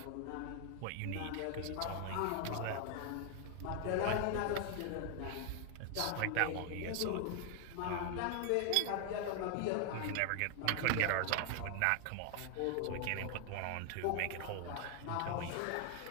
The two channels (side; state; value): both; different; correlation 0.00